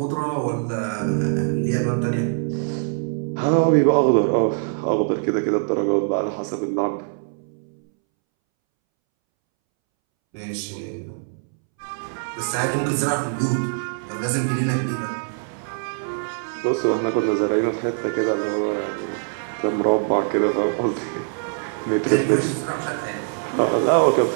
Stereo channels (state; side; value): silent; left; 63 dB below the other